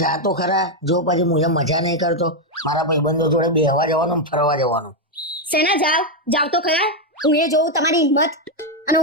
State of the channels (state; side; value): normal; both; correlation 0.03